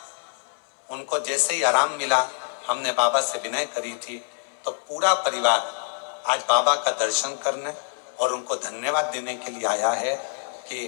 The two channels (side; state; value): right; silent; 61 dB below the other